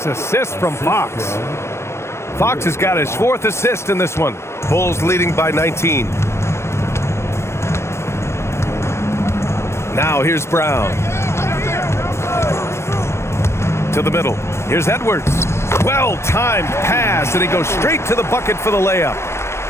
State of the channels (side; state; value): right; late; 0.13 ms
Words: assist from Fox. Fox has got his 4th assist in this one. Bulls leading by 19. Now here's Brown. To the middle. Here's Edwards. Well-timed pass, and he goes straight to the bucket for the layup.